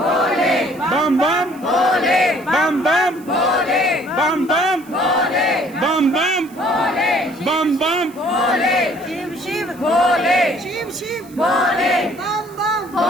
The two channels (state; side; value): noise; right; hiss, 24 dB below the sound